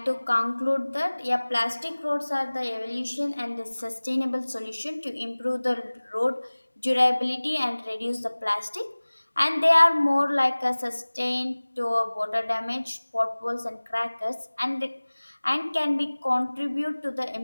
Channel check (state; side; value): inverted; both; correlation -1.00